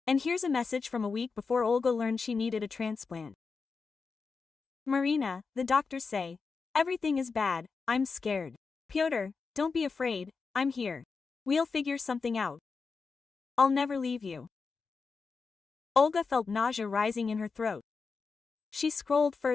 And here's a message from a week before Olga learned she needed a transplant. "Marina, the doctors say everything is bad. I'm scared. Pyotr, don't be afraid, I'm here. We'll figure something out. I'll never leave you." Olga felt nausea rising in her throat. She scrolled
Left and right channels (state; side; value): quieter; right; 4.8 dB